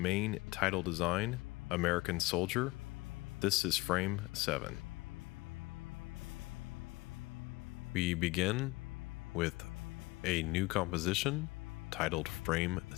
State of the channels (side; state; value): right; quieter; 22.3 dB